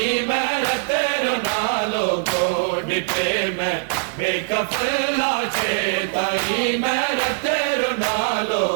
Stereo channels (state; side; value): silent; left; digital silence